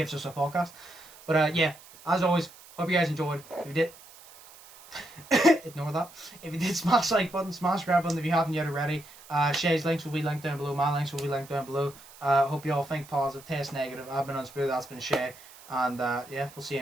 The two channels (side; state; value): right; noise; hiss, 21 dB below the sound